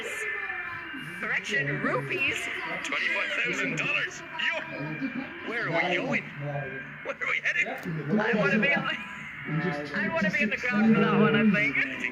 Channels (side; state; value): both; identical; correlation 1.00